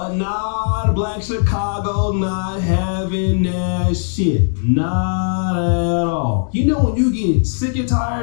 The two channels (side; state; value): right; silent; 66 dB below the other